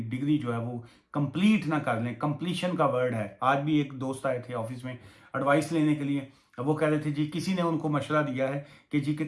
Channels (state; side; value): identical; both; correlation 1.00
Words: डिग्री जो है वो कंप्लीट ना कर लें। कंप्लीशन का वर्ड है। आज भी एक दोस्त आए थे ऑफिस में एडवाइस लेने के लिए, वो कह रहे थे जी किसी ने उनको मशवरा दिया है कि जी कि